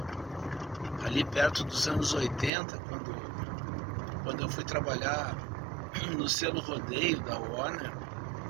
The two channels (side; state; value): left; drops out; at 2.5 s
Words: perto dos anos 80, quando eu fui trabalhar no selo Rodeio da Warner.